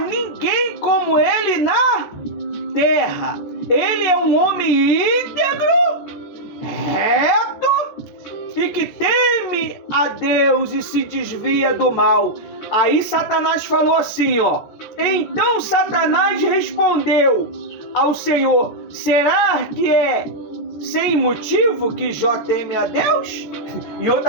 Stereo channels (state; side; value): late; right; 14 ms